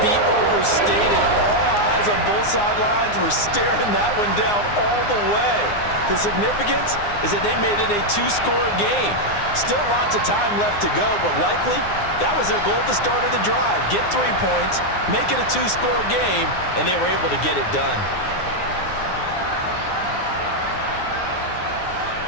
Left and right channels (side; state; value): right; late; 9.7 ms